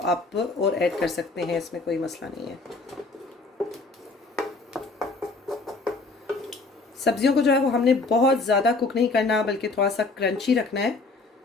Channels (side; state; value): right; quieter; 3.6 dB